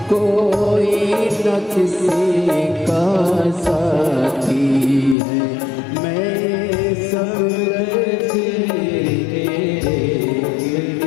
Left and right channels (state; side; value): drops out; right; at 5.2 s